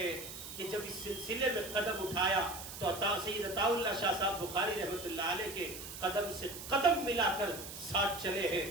کہ جب اس سلسلے میں قدم اٹھایا تو سید عطا اللہ شاہ صاحب بخاری رحمۃ اللہ علیہ کے قدم سے قدم ملا کر ساتھ چلے ہیں،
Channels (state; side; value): noise; right; hiss, 10 dB below the sound